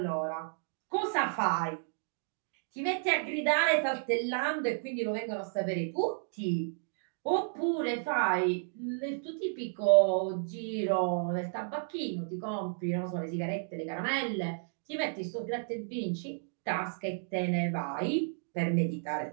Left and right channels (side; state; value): left; silent; digital silence